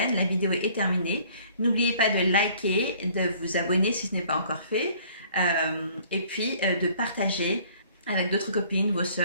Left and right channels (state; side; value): inverted; both; correlation -0.56